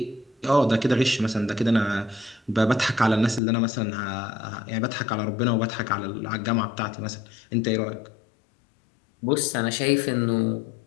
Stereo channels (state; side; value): drops out; right; at 3.4 s